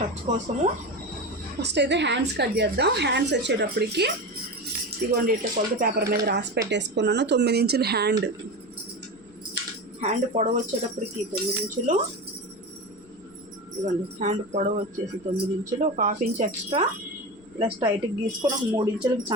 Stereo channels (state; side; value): noise; left; rumble, 29 dB below the sound